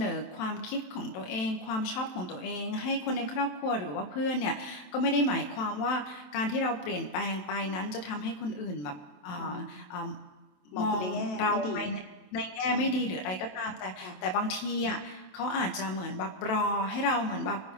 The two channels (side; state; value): right; late; 27 ms